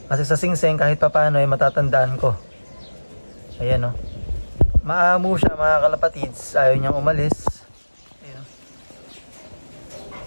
Kasi sa singsing kahit pa paano ay matatandaan ko. Ayan o, maamo siya mga kalapatids, ayaw niyang umalis. Ayan.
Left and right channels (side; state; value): both; inverted; correlation -1.00